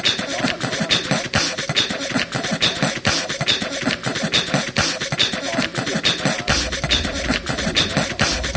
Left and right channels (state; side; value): identical; both; correlation 1.00